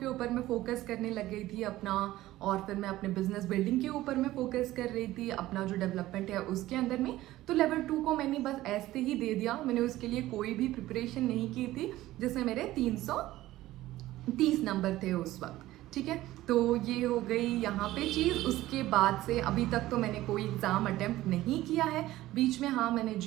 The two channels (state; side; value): quieter; left; 16.0 dB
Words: ऊपर मैं फोकस करने लग गई थी अपना, और फिर मैं अपने बिजनेस बिल्डिंग के ऊपर मैं फोकस कर रही थी, अपना जो डेवलपमेंट है उसके अंदर में। तो लेवल 2 को मैंने बस ऐसे ही दे दिया। मैंने उसके लिए कोई भी प्रिपरेशन नहीं की थी, जिसमें मेरे 330 नंबर थे उस वक्त। ठीक है, तो ये हो गई यहाँ पे चीज़। उसके बाद से अभी तक तो मैंने कोई एग्ज़ाम अटेम्प्ट नहीं किया है। बीच में हाँ, मैंने